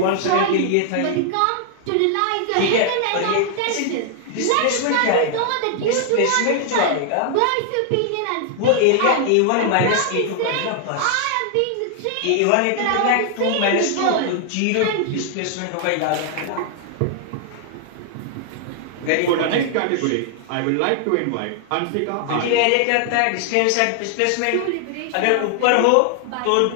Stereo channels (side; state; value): both; different; correlation 0.00